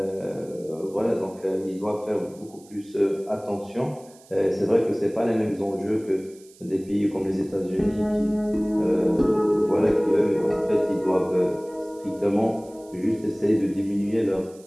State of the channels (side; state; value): right; noise; hiss, 26 dB below the sound